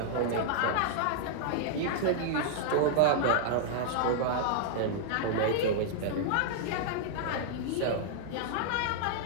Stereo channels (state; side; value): different; both; correlation -0.02